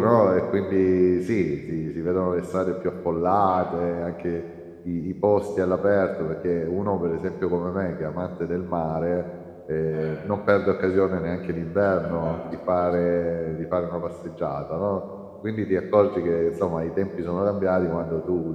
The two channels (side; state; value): both; identical; correlation 1.00